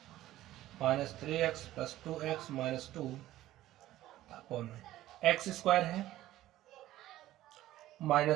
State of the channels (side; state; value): left; quieter; 14.7 dB